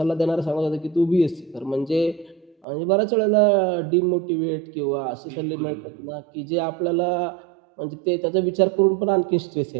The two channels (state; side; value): drops out; left; at 2.7 s